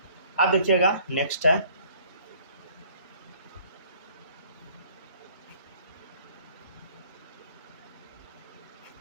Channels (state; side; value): inverted; both; correlation -0.57